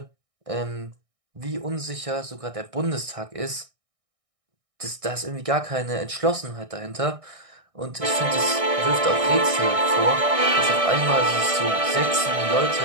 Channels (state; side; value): late; left; 1.6 ms